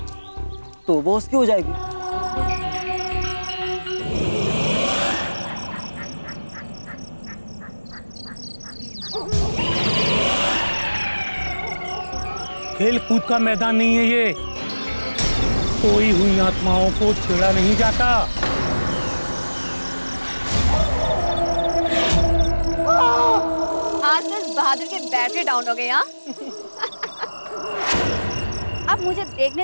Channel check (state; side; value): inverted; both; correlation -1.00